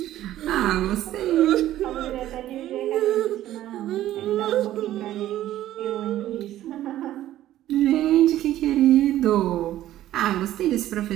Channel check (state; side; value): quieter; left; 13.5 dB